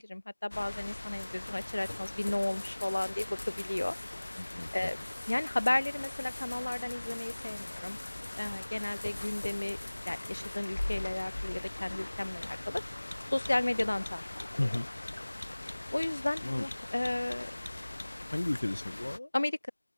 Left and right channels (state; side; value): inverted; both; correlation -1.00